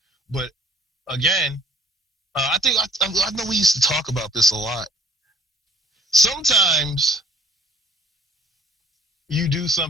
But again, I know we used to talk about this a lot. Sometimes you do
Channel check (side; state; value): both; normal; correlation 0.55